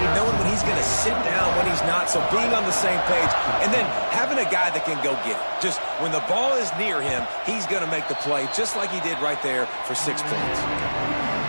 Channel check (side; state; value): both; inverted; correlation -1.00